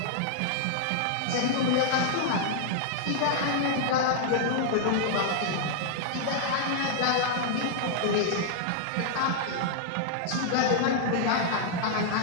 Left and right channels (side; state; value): both; different; correlation -0.01